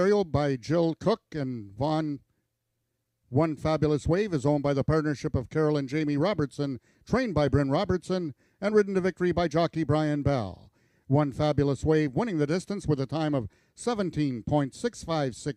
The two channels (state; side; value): identical; both; correlation 1.00